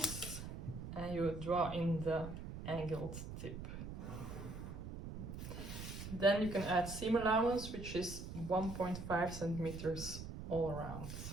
and you draw in the angled tip. Then you can add seam allowance, which is 1.5 centimeters all around.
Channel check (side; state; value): right; noise; rumble, 8 dB below the sound